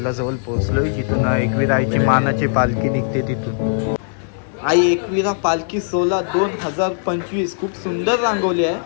पोहोचलोय, जिथून एकवीरा आईची मानाची पालखी निघते तिथून। आई एकवीरा पालखी सोला 2025 खूप सुंदर रांगवली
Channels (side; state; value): right; silent; digital silence